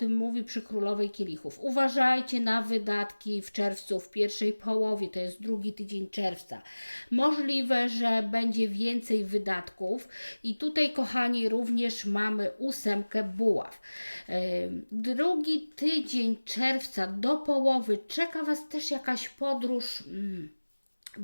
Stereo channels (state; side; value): inverted; both; correlation -1.00